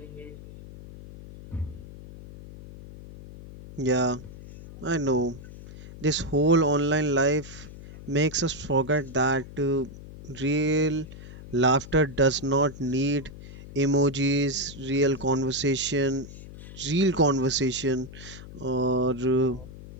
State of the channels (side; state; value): left; noise; hum, 15 dB below the sound